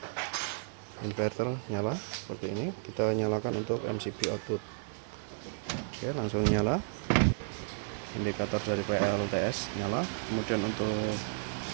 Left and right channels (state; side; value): silent; left; digital silence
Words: inverter nyala seperti ini. Kita nyalakan untuk MCB output. Oke, langsung nyala. Indikator dari PLTS nyala. Kemudian untuk